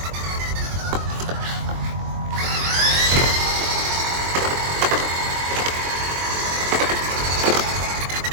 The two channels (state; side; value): late; left; 23 ms